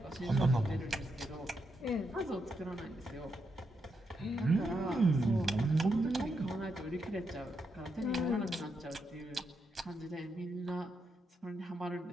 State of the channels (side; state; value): both; normal; correlation 0.82